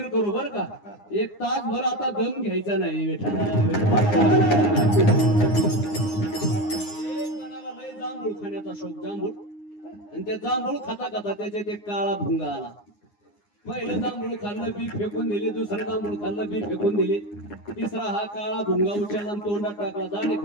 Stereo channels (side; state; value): right; late; 9.7 ms